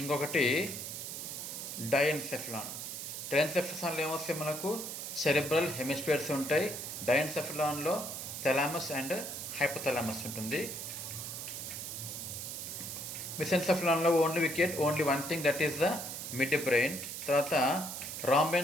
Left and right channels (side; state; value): right; noise; hiss, 6 dB below the sound